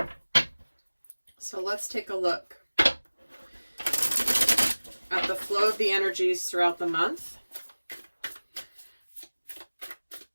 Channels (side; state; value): both; inverted; correlation -1.00